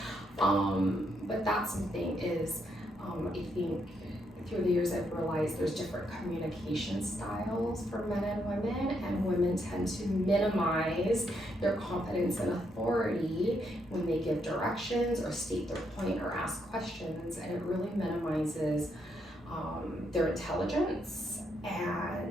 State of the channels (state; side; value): normal; both; correlation 0.77